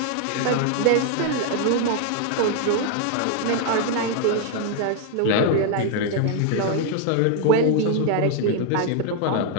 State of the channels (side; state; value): both; different; correlation 0.00